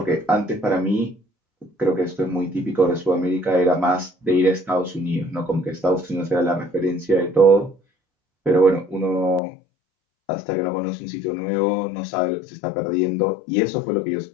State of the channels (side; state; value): right; drops out; at 9.4 s